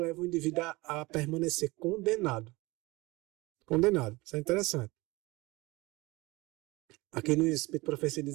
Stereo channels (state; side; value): quieter; left; 22.3 dB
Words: o indivíduo a permanecer condenado. Condenado. Isso é interessante. Aqui no Espírito Profecia